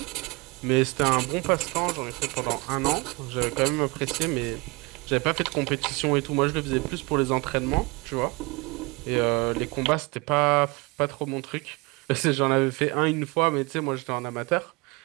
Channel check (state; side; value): quieter; left; 26.6 dB